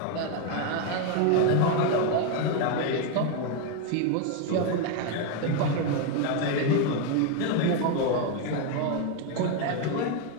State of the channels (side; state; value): both; different; correlation 0.02